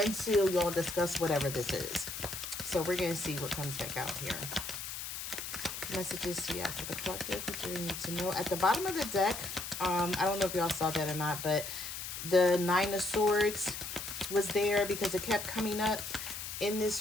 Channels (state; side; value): noise; left; hiss, 7 dB below the sound